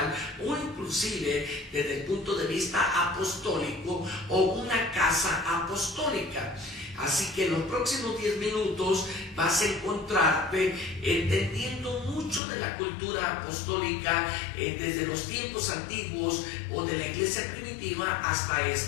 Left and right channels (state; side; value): drops out; right; at 12.4 s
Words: o inclusive desde el punto de vista apostólico o una casa apostólica. Así que en los próximos 10 minutos vas a encontrarte entendiendo mucho de la cultura apostólica desde los tiempos antiguos o de la iglesia primitiva hasta